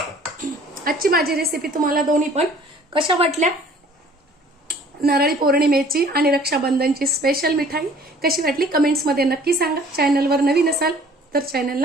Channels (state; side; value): normal; both; correlation 0.53